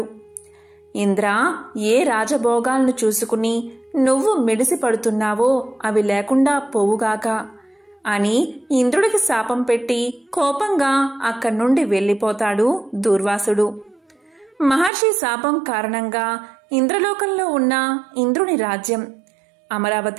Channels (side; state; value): left; drops out; at 14.9 s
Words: ఇంద్ర, ఏ రాజభోగాలను చూసుకుని నువ్వు మిడిసి పడుతున్నావో అవి లేకుండా పోవుగాక అని ఇంద్రుడికి శాపం పెట్టి కోపంగా అక్కడి నుండి వెళ్ళిపోతాడు దూర్వాసుడు. మహర్షి శాపం కారణంగా ఇంద్రలోకంలో ఉన్న ఇంద్రుని రాజ్యం